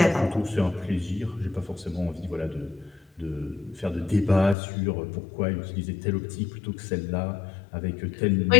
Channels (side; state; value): right; drops out; at 4.5 s